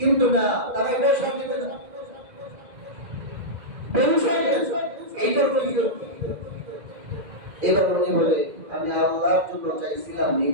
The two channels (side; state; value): left; late; 2.4 ms